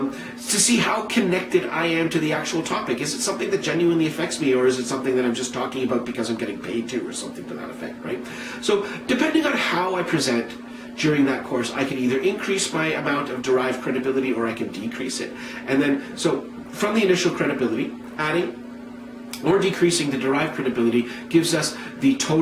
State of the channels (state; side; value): identical; both; correlation 1.00